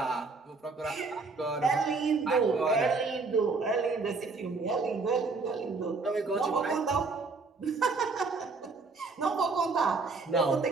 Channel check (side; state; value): left; quieter; 4.1 dB